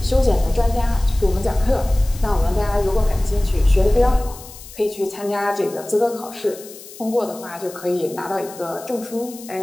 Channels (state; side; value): noise; left; hiss, 17 dB below the sound